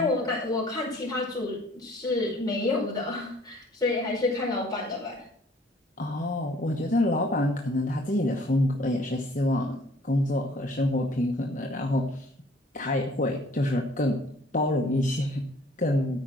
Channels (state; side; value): normal; both; correlation 0.56